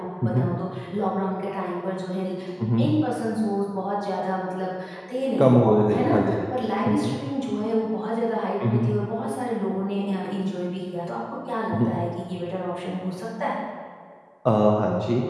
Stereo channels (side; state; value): both; identical; correlation 1.00